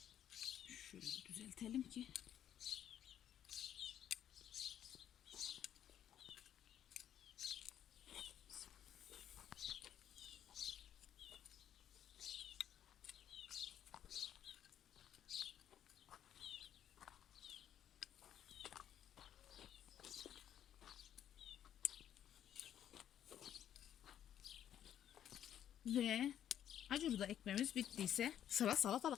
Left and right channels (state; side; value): quieter; right; 10.4 dB